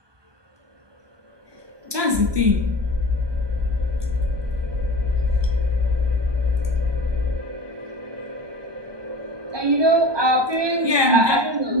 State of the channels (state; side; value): late; left; 1.2 ms